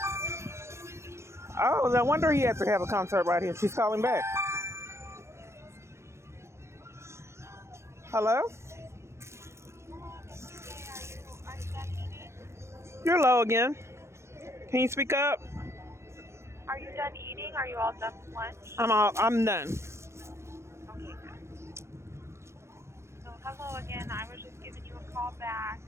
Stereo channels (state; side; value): late; left; 0.13 ms